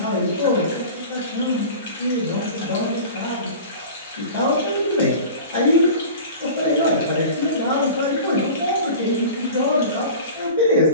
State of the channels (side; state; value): both; inverted; correlation -0.37